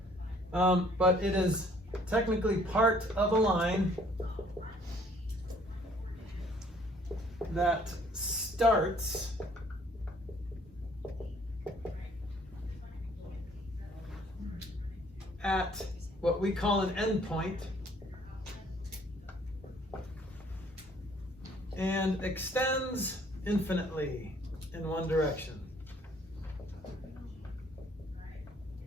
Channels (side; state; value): both; normal; correlation 0.60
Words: but it is technically part of a line that starts at what we call an endpoint and extends infinitely in one direction.